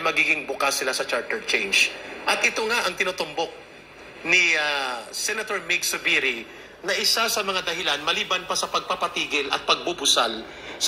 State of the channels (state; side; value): identical; both; correlation 1.00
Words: magiging bukas sila sa charter change. At ito nga ang tinutumbok ni Senator Mig Zubiri na isa sa mga dahilan maliban pa sa pagpapatigil at pagbubusal